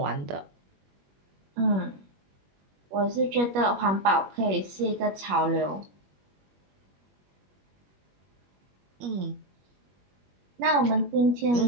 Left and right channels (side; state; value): left; late; 21 ms